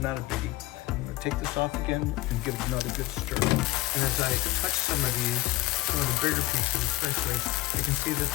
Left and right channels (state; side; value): quieter; right; 18.1 dB